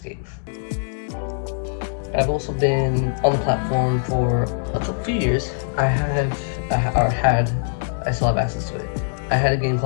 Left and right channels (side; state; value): right; silent; digital silence